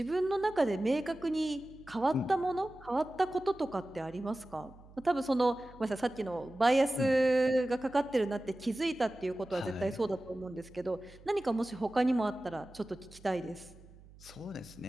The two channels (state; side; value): noise; right; hum, 22 dB below the sound